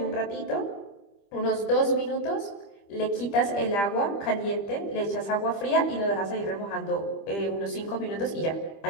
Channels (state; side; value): late; right; 25 ms